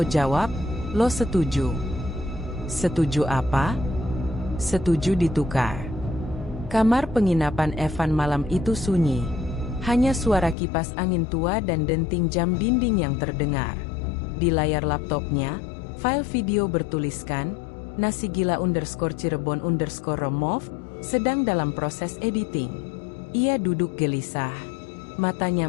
jawab, lo setuju. Setuju apa? Setuju ditukar. Kamar penginapan Evan malam itu sunyi. Hanya suara kipas angin tua dan denting jam dinding yang terdengar. Di layar laptopnya, file video bertuliskan, Nasi Gila _Cirebon_remove, sedang dalam proses editing. Ia duduk gelisah.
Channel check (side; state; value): right; drops out; at 10.6 s